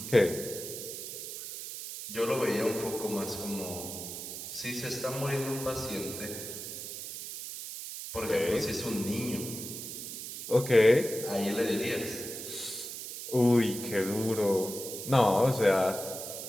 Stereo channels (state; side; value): noise; right; hiss, 8 dB below the sound